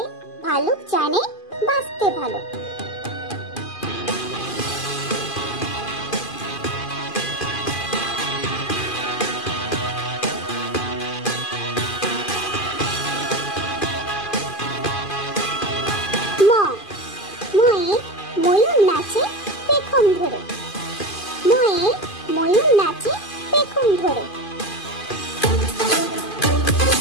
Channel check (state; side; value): late; right; 2.5 ms